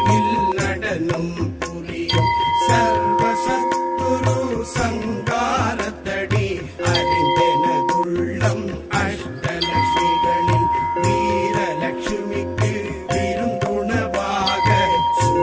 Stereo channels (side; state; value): both; identical; correlation 1.00